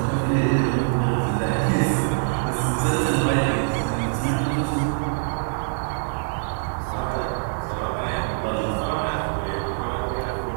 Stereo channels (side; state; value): left; silent; digital silence